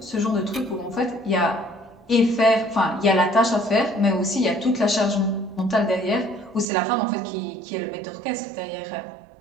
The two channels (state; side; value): drops out; left; at 6.7 s